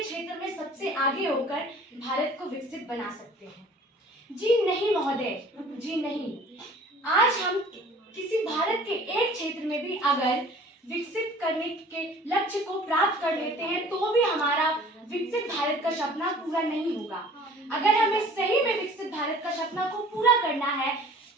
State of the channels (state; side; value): normal; both; correlation 0.49